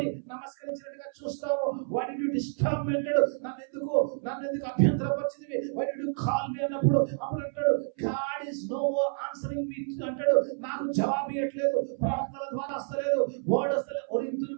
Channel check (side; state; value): left; silent; 58 dB below the other